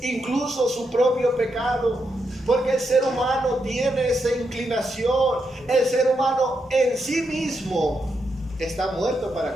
incluso su propio pecado. Porque el ser humano tiene esa inclinación. El ser humano en sí mismo está muerto para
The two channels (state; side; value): normal; both; correlation 0.83